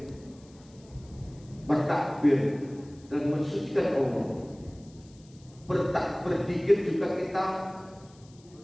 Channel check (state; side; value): noise; left; hiss, 28 dB below the sound